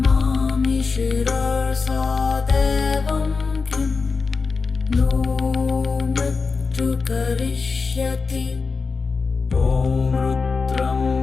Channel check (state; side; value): quieter; right; 4.6 dB